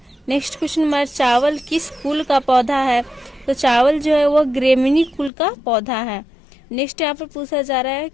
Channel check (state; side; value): drops out; right; at 5.3 s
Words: नेक्स्ट क्वेश्चन हमारा, चावल किस कुल का पौधा है, तो चावल जो है वह ग्रेमिनी कुल का पौधा है। नेक्स्ट यहाँ पर पूछा जा रहा है